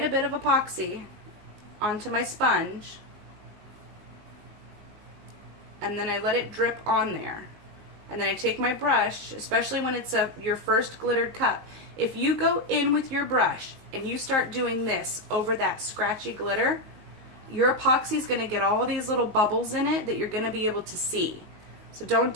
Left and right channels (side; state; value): left; late; 19 ms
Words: a bit of epoxy onto my sponge, and then I let it drip on there. And then I take my brush, especially when it's your first glittered cup. If you go in with your brush and you start doing this over that scratchy glitter, your epoxy is going to get all these little bubbles in it that you're going to be able to see. So don't